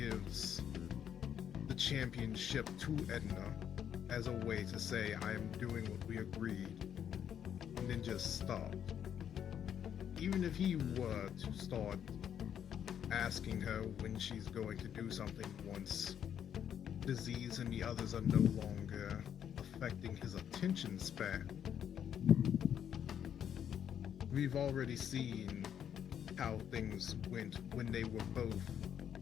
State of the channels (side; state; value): right; quieter; 9.1 dB